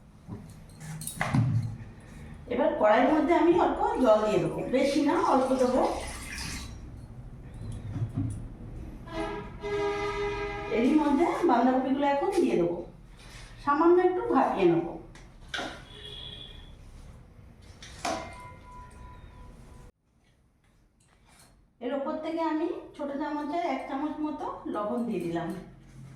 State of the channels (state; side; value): identical; both; correlation 1.00